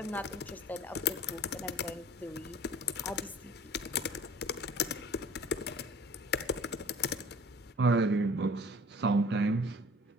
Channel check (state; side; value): normal; both; correlation 0.48